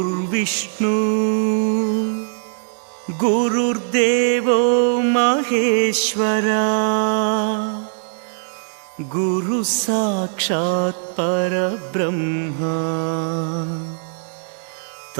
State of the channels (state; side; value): silent; left; digital silence